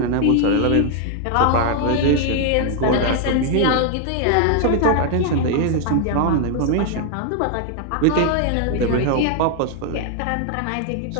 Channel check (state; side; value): different; both; correlation 0.00